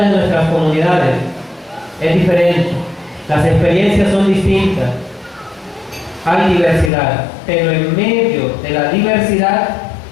nuestras comunidades es diferente. Las experiencias son distintas. Hay diversidad, pero en medio de la diversidad,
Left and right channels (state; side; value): drops out; right; at 6.9 s